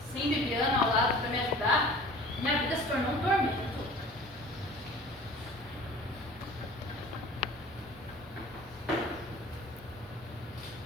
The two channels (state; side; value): normal; both; correlation 0.44